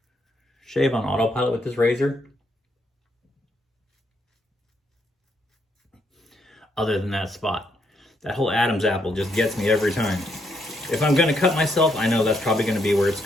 shave on autopilot with this razor. Other than that spot. That whole Adam's apple just gets me every time. If I'm gonna cut myself, I know that's probably gonna be where it's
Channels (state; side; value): normal; both; correlation 0.75